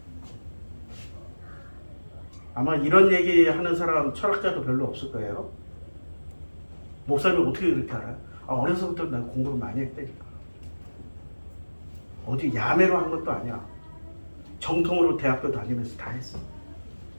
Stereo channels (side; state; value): both; inverted; correlation -1.00